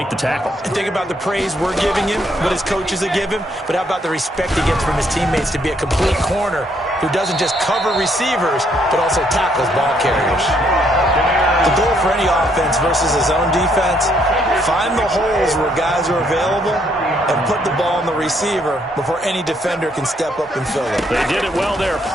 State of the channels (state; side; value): normal; both; correlation 0.70